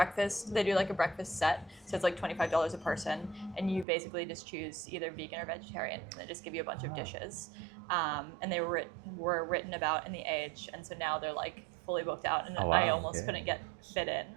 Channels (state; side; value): drops out; left; at 3.9 s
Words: They do like a breakfast set, so it's like $25 a person, and you basically just choose either vegan or vegetarian. And they just give you a bunch of dishes, and they were written about in the Age, and so now they're like fully booked out, and I almost couldn't get fit in.